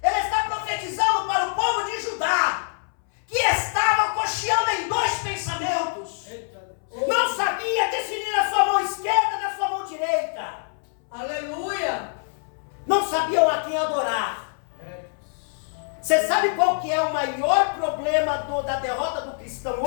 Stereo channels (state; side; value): silent; right; 62 dB below the other